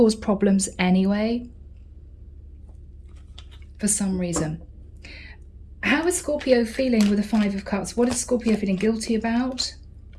problems anyway for some reason. How is Scorpio feeling with the Five of Cups? What is Scorpio feeling guilty about?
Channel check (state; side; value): identical; both; correlation 1.00